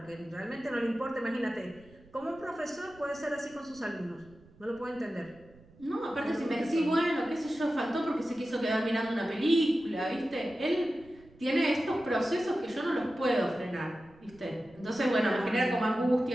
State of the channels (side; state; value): right; noise; rumble, 25 dB below the sound